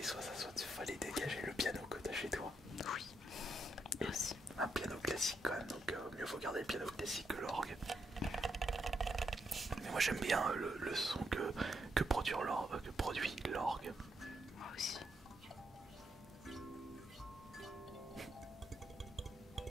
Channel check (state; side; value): normal; both; correlation 0.80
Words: soit ça, soit il fallait dégager le piano que t'as chez toi. Oui. Aussi. Un piano classique quand même, donc mieux faut garder le piano classique que l'orgue. Mais moi j'aime bien le son que produit l'orgue. Moi aussi.